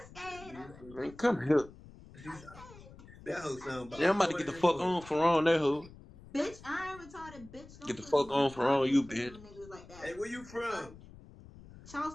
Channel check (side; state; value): left; noise; rumble, 19 dB below the sound